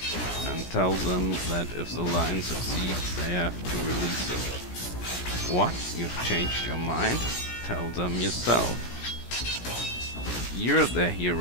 And tell them that if the Lion succeeds, they have to release him. What? You've changed your mind? Tell them yourself. You're their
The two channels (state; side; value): late; right; 17 ms